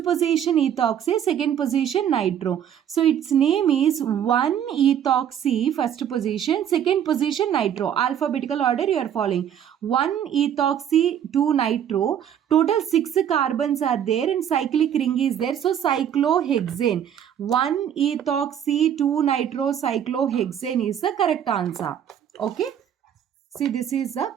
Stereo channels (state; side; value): quieter; left; 9.5 dB